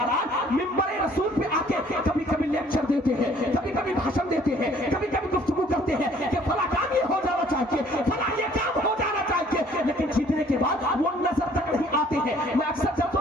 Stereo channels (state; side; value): normal; both; correlation 0.58